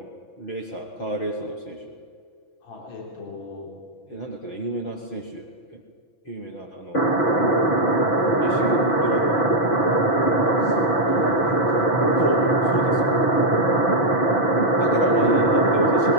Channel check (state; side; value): late; right; 6.0 ms